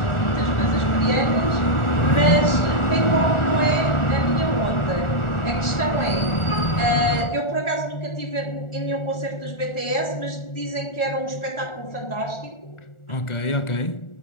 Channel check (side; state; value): right; late; 1.4 ms